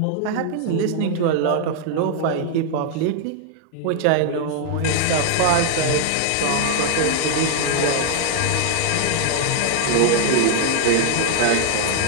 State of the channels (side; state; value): both; different; correlation 0.00